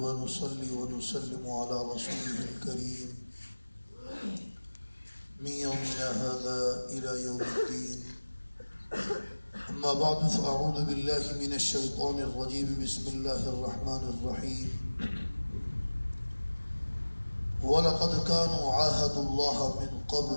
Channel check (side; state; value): both; inverted; correlation -1.00